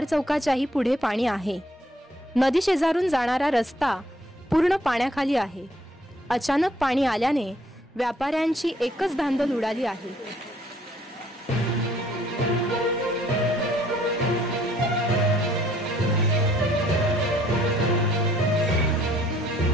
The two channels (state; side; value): normal; both; correlation 0.63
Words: चौकाच्याही पुढे पाणी आहे. नदी शेजारून जाणारा रस्ता पूर्ण पाण्याखाली आहे. अचानक पाणी आल्याने व्यापाऱ्यांची एकच धांदल उडाली आहे.